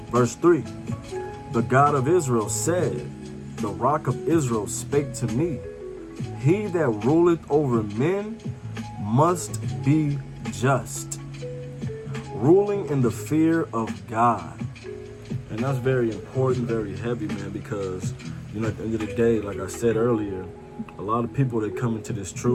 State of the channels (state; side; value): identical; both; correlation 1.00